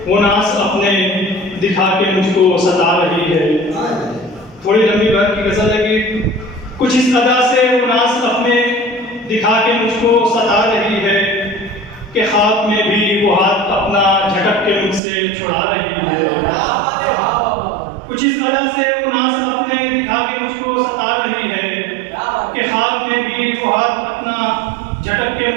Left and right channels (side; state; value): left; drops out; at 15.0 s